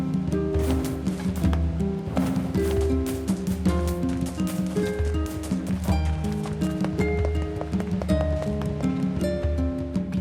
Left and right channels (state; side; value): identical; both; correlation 1.00